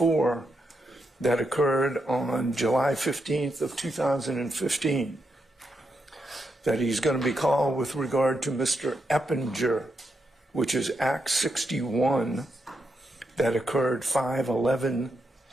that occurred on July 15th of 2015. That he's going to be called with regard to Mr. Eppinger, which is Acts 61 that occurred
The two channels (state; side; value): normal; both; correlation 0.83